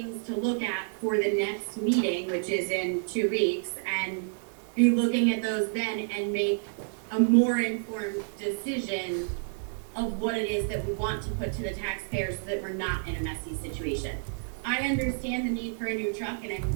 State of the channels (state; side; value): silent; left; 58 dB below the other